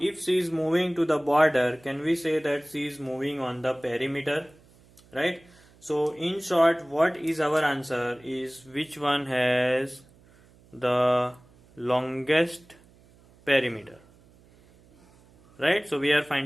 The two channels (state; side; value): noise; right; hum, 28 dB below the sound